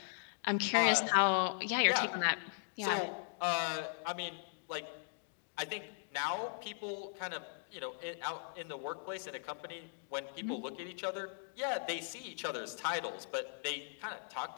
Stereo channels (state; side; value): silent; right; digital silence